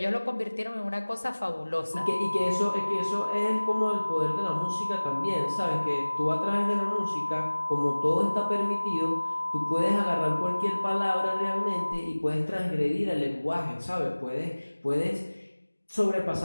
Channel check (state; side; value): inverted; both; correlation -1.00